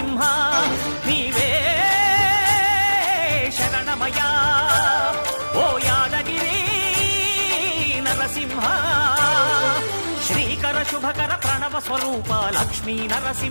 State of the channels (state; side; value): inverted; both; correlation -1.00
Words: నీవే శరణమయా ఓ యాదగిరి నరసింహ శ్రీకర శుభకర ప్రణవ స్వరూప లక్ష్మీ